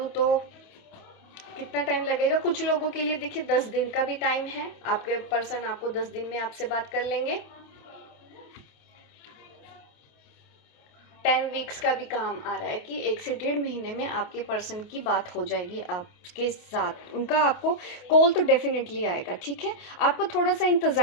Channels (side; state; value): right; late; 28 ms